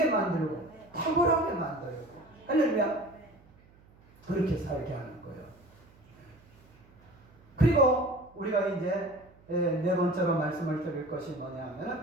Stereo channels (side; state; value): right; noise; hum, 27 dB below the sound